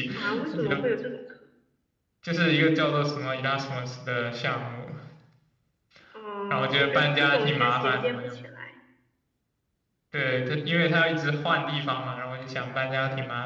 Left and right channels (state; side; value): identical; both; correlation 1.00